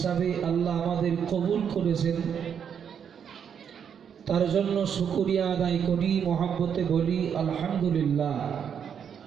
আল্লাহ আমাদের কবুল করেছেন। তার জন্য শুকরিয়া আদায় করি, মহব্বতে বলি আলহামদুলিল্লাহ।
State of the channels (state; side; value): quieter; left; 7.8 dB